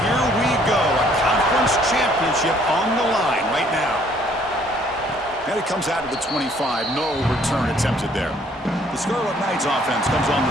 we go. A conference championship on the line right now. And it comes out of the 25. No return attempted there. The Scarlet Knights offense comes on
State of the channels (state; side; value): normal; both; correlation 0.62